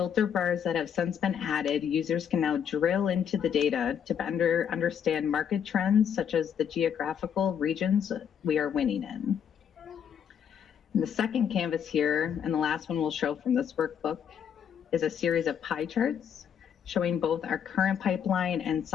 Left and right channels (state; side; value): quieter; right; 8.1 dB